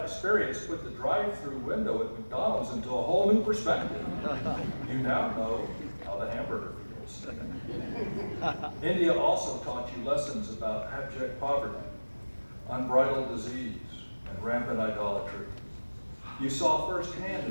put the drive-through window at McDonald's into a whole new perspective. You now know how the hamburger feels. India also taught you lessons about abject poverty, unbridled disease, and rampant idolatry. You saw firsthand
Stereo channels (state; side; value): inverted; both; correlation -1.00